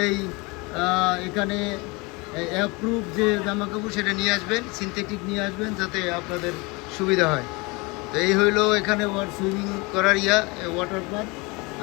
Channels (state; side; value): quieter; right; 26.5 dB